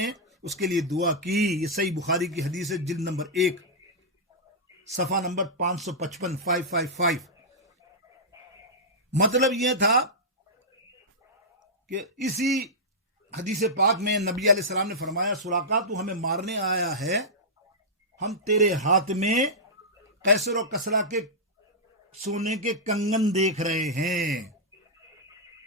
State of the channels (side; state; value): both; normal; correlation -0.11